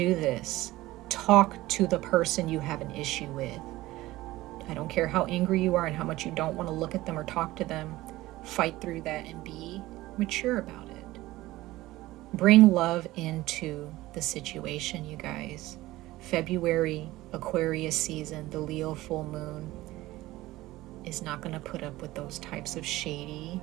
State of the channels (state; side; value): quieter; left; 17.6 dB